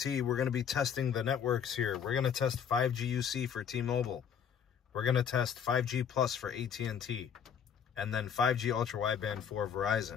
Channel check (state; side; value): quieter; right; 7.8 dB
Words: We're going to be testing the networks here. We're going to test 5G UC for T-Mobile. We're going to test 5G Plus for AT&T. And then 5G Ultra Wideband for